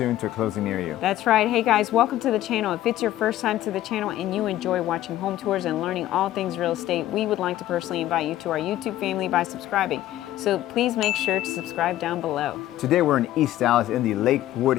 to a closing near you. That's right. Hey guys, welcome to the channel. If it's your first time to the channel and you enjoy watching home tours and learning all things real estate, we would like to personally invite you to our YouTube family by subscribing. So please make sure to subscribe down below. Today we're in East Dallas in the Lakewood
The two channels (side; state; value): right; quieter; 13.9 dB